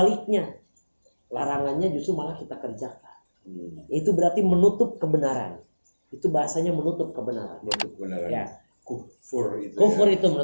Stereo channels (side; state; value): both; inverted; correlation -1.00